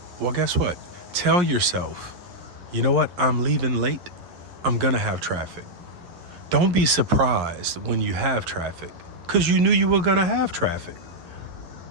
Well, guess what? Tell yourself, you know what? I'm leaving late. I'm going to have traffic. Don't be surprised when you have traffic because you knew you were going to have traffic.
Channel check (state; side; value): late; left; 11 ms